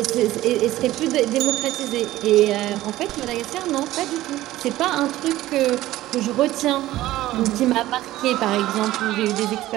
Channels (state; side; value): quieter; left; 15.6 dB